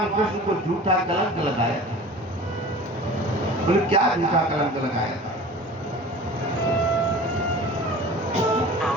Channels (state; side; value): normal; both; correlation 0.40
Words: कृष्ण को झूठा कलंक लगाया। बोले क्या झूठा कलंक लगाया था।